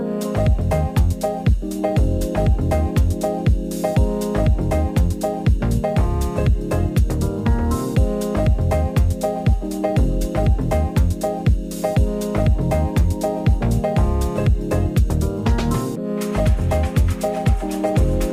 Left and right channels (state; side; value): identical; both; correlation 1.00